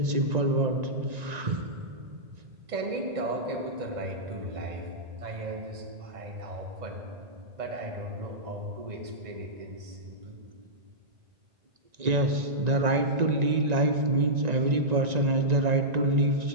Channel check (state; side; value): late; left; 1.9 ms